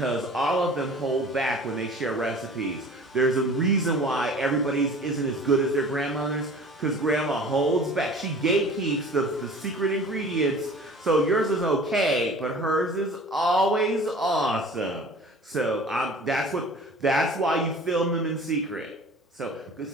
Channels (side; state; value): both; normal; correlation 0.44